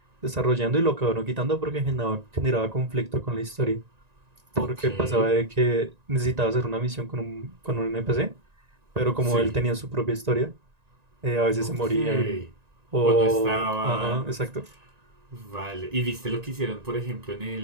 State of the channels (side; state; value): left; late; 1.9 ms